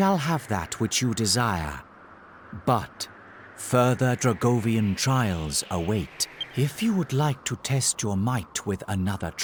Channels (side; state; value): both; identical; correlation 1.00